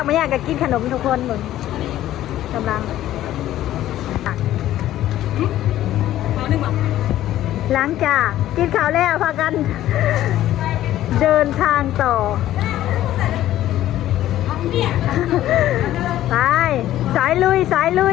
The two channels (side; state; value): right; quieter; 13.4 dB